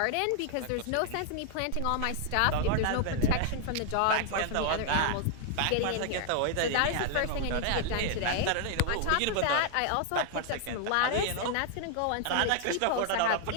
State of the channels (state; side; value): different; both; correlation 0.00